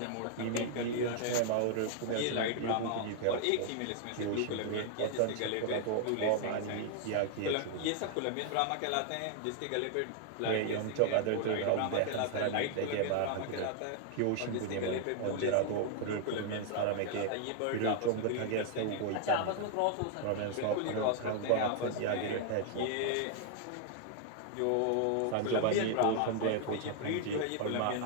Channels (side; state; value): both; different; correlation 0.00